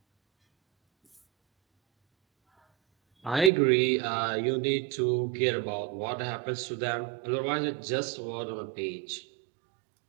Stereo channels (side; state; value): left; drops out; at 3.5 s